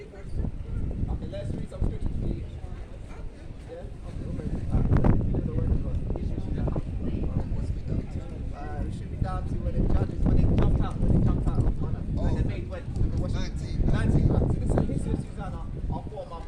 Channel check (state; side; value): identical; both; correlation 1.00